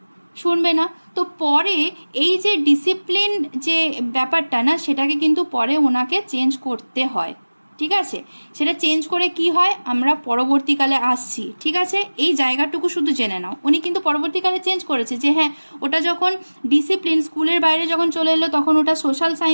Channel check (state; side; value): inverted; both; correlation -1.00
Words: শুনবে না। তো পরে এই যে ডিসিপ্লিন যে ব্যাপারটা না, সেটাকে কিন্তু পরে ওনাকে চেঞ্জ করতে হয়। ঠিক আছে, সেটা চেঞ্জ করে কি হয় আমরা পরবর্তীকালে আসছি। ঠিক আছে, এই জায়গাটুকু শুধু জেনে নাও, উনি কিন্তু পরবর্তীকালে চেঞ্জ করেছে যে হ্যাঁ, ওটা যখন ডিসিপ্লিন স্কুলের বাইরে যখন চলে এলো তখন ওটা সোশ্যাল